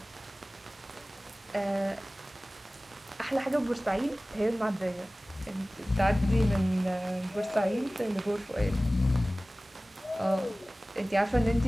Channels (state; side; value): normal; both; correlation 0.98